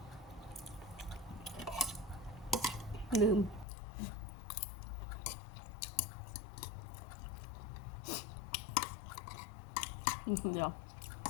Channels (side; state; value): right; drops out; at 3.7 s